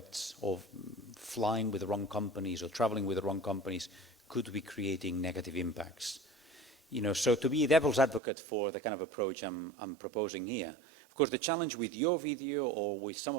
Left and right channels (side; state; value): left; drops out; at 8.2 s